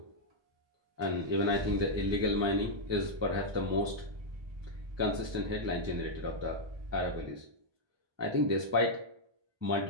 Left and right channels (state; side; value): late; left; 1.2 ms